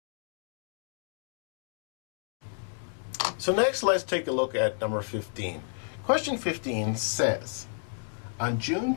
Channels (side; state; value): right; silent; digital silence